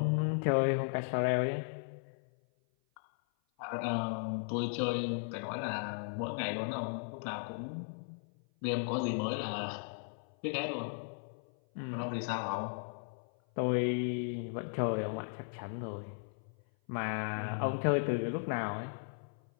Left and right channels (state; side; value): silent; right; 54 dB below the other